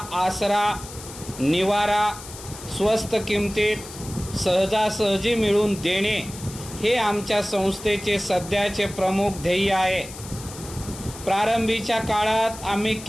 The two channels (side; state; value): left; noise; hiss, 14 dB below the sound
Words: आसरा, निवारा स्वस्त किमतीत सहजासहजी मिळवून देणे हे आमच्या संस्थेचे सध्याचे प्रमुख ध्येय आहे. प्रारंभीच्या काळात आम्ही